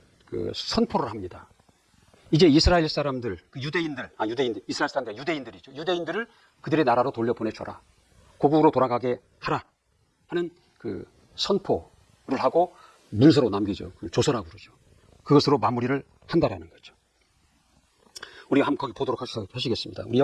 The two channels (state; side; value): identical; both; correlation 1.00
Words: 그 선포를 합니다. 이제 이스라엘 사람들, 이스라엘 사람들, 유대인들이죠. 유대인들을 그들의 나라로 돌려보내줘라. 고국으로 돌아가게 하라 하는 그 선포를 하고 문서로 남기죠. 조서라고 그러죠. 그것으로 마무리를 한다라는 거죠. 우리가 한번 거기 보도록 하시겠습니다. 우리